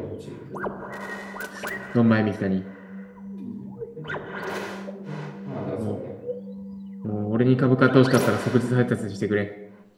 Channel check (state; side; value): identical; both; correlation 1.00